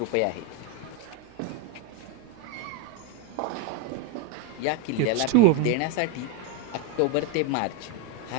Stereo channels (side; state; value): both; different; correlation 0.03